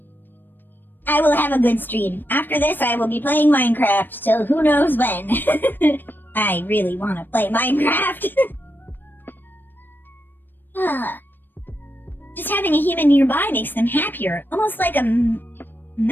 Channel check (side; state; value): right; late; 0.093 ms